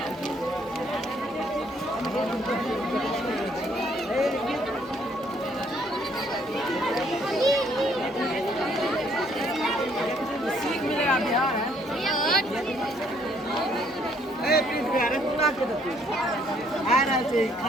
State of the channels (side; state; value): both; normal; correlation 0.66